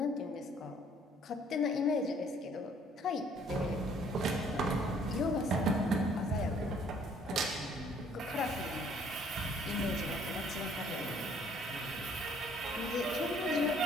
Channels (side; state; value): both; normal; correlation 0.60